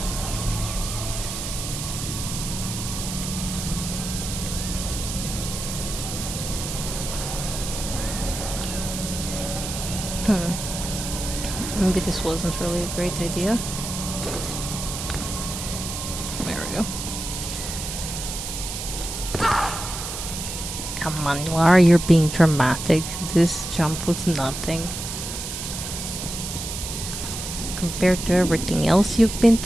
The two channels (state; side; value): noise; right; hiss, 6 dB below the sound